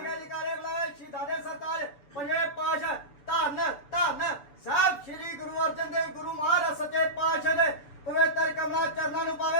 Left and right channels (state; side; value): late; right; 6.9 ms